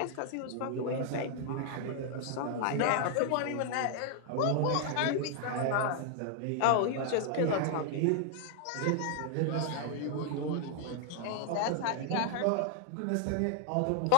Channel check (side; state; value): both; different; correlation 0.00